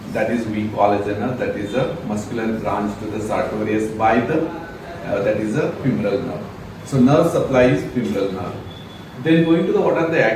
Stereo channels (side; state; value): both; identical; correlation 1.00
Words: That is we call as a nerve. That is a muscular branch to the Sartorius by the that is a femoral nerve. So nerve supply is femoral nerve. Then going to the what are the